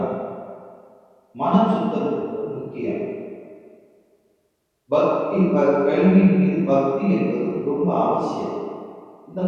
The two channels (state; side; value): identical; both; correlation 1.00